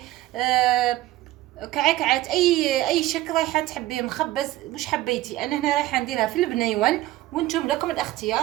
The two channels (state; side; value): quieter; left; 16.1 dB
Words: كعكعات، اي شكل رايحه تحبيه، مخبز مش حبيتي. انا هنا رايحه نديرها في البنيون، وانتم لكم